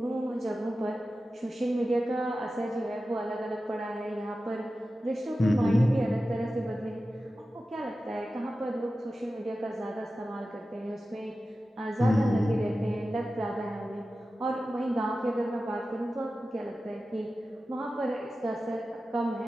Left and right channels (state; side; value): normal; both; correlation 0.94